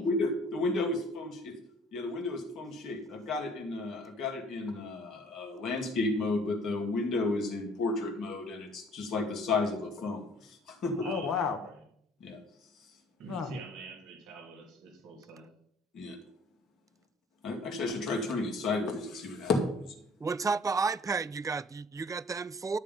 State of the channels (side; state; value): both; normal; correlation 0.55